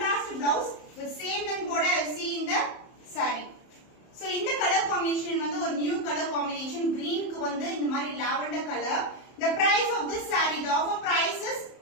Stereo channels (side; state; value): right; late; 30 ms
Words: blouse with same and border I see in the saree. So இந்த colour combination வந்து ஒரு new colour combination, கிரீனுக்கு வந்து இந்த மாதிரி lavender colour. The price of this saree, the offer price